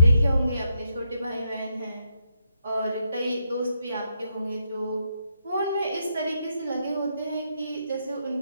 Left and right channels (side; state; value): both; inverted; correlation -0.80